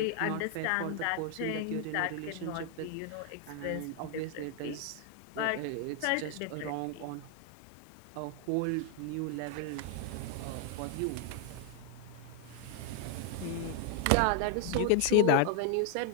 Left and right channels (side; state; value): both; different; correlation 0.00